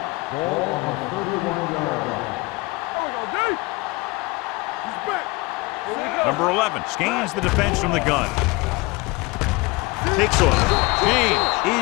Ball on the 31-yard line. He's back. Number 11 scans the defense from the gun. Takes off.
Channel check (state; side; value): quieter; right; 24.2 dB